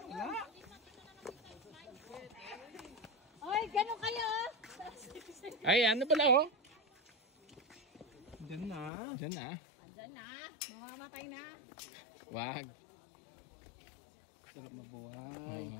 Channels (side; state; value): right; drops out; at 8.9 s